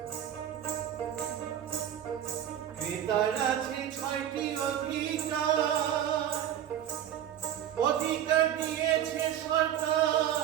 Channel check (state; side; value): quieter; left; 10.6 dB